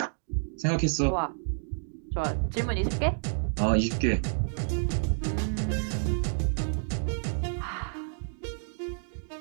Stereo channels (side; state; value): left; silent; digital silence